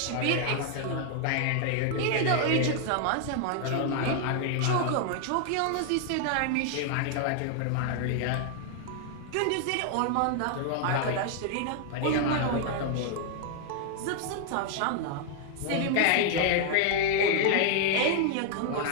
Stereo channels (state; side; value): different; both; correlation 0.00